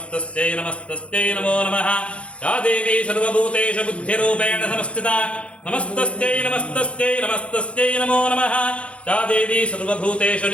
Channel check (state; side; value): late; right; 0.061 ms